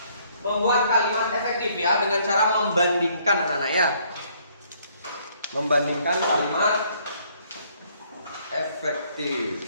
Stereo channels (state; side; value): inverted; both; correlation -0.65